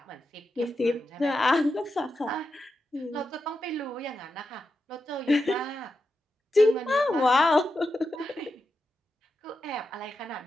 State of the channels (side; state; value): both; normal; correlation 0.88